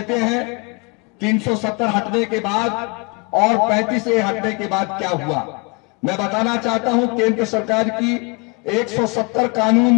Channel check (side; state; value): right; quieter; 31.2 dB